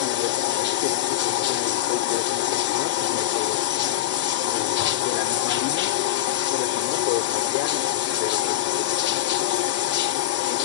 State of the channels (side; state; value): right; quieter; 14.0 dB